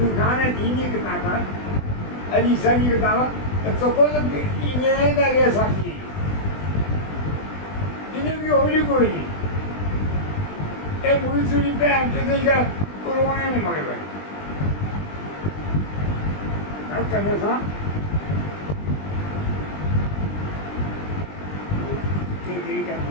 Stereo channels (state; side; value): late; right; 20 ms